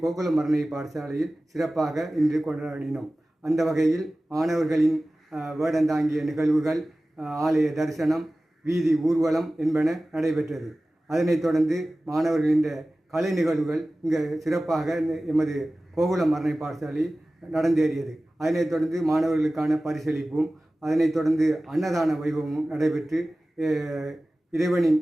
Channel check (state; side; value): normal; both; correlation 0.97